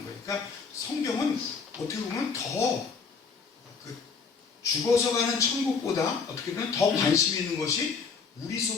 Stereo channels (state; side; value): quieter; right; 5.4 dB